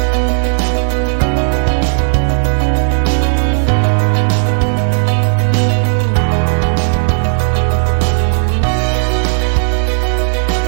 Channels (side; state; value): left; silent; digital silence